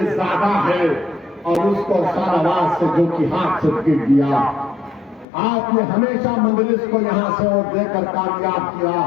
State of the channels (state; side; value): drops out; right; at 5.2 s